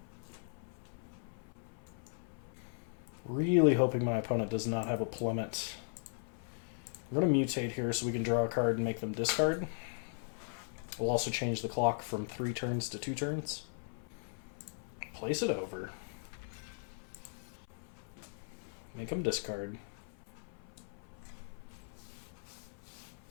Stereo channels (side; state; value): right; silent; 52 dB below the other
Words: Really hoping my opponent does not have a plummet. I'm going to mutate here so we can draw a card and make them discard. We'll also change the clock from 3 turns to 2 turns. Place it over. Make them discard.